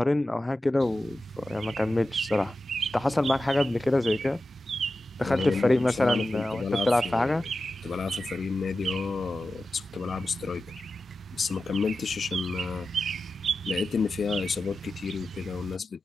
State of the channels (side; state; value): both; normal; correlation 0.92